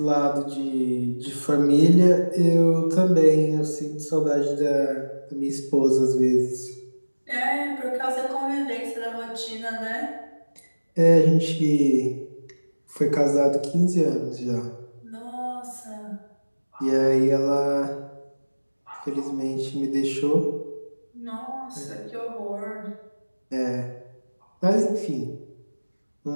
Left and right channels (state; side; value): inverted; both; correlation -1.00